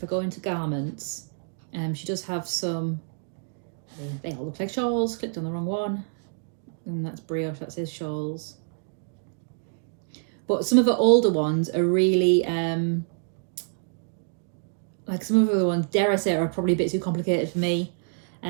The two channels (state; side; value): silent; left; digital silence